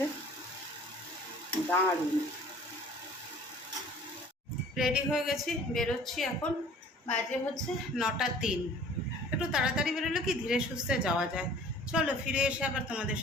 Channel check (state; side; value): normal; both; correlation 0.49